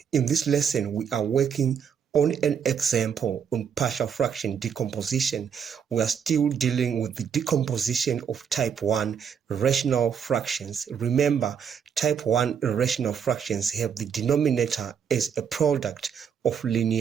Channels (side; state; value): left; quieter; 7.4 dB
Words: In this lesson, we are working on an example on partial fraction decomposition. We are still dealing with the decomposition of type 1 rational fractions. Remember, type 1 rational fractions have the denominator as a product of